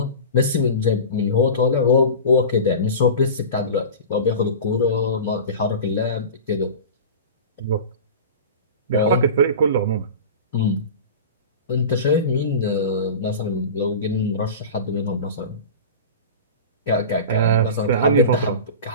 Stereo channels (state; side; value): inverted; both; correlation -0.32